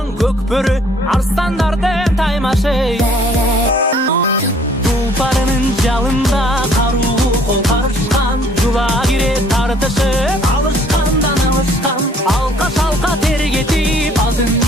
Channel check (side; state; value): both; normal; correlation 0.59